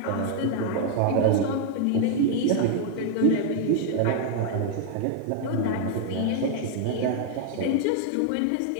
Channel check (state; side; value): different; both; correlation 0.00